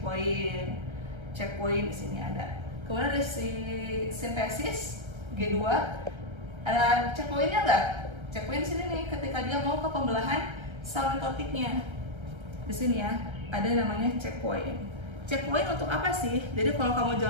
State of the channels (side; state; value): left; late; 1.3 ms